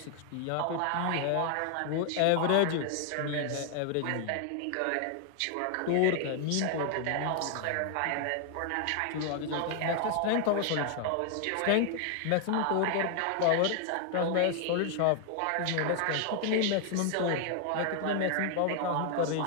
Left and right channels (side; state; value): both; different; correlation 0.00